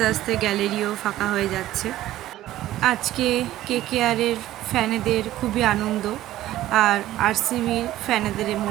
আস্তে গ্যালারিও ফাঁকা হয়ে যাচ্ছে। আজকে কেকেআরের ফ্যানেদের খুবই আনন্দ, আর আরসিবির ফ্যানেদের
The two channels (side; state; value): left; quieter; 14.4 dB